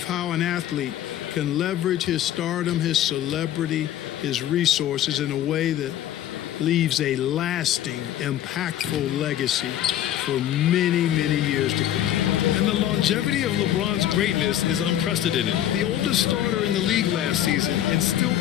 how an athlete can leverage his stardom, his celebrity, his resources in a way that leaves a lasting, impactful legacy for many, many years to come. And the longevity of LeBron's greatness is unprecedented. The oldest starter in the league last season and still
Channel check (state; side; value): quieter; right; 11.8 dB